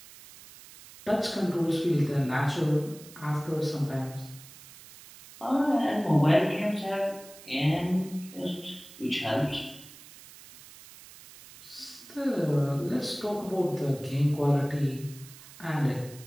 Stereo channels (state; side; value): noise; right; hiss, 19 dB below the sound